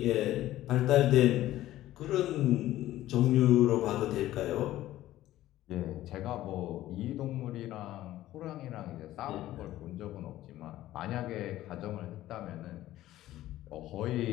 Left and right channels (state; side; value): quieter; right; 14.6 dB